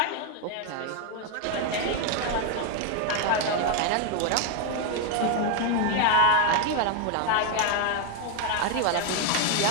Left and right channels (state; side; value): different; both; correlation 0.01